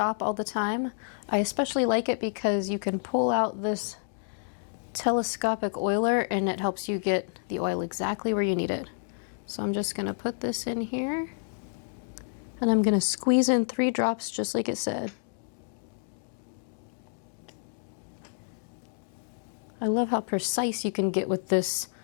all the time. I especially like it because you can pull out this telescopic oiler and it helps you get the oil exactly where you need it. So I'm just going to put this in here and I'm going to squeeze in 3 drops just like it said. I love how precise you can get with this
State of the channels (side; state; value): right; silent; digital silence